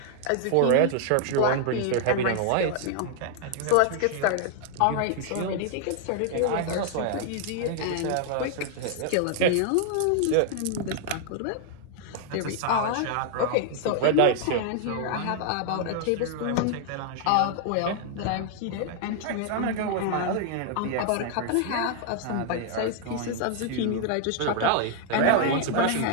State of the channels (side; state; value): both; different; correlation 0.00